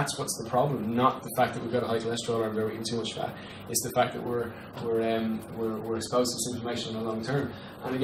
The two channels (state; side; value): identical; both; correlation 1.00